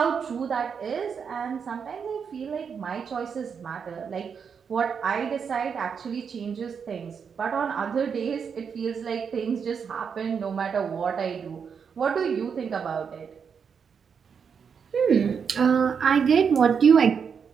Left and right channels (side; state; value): left; quieter; 6.6 dB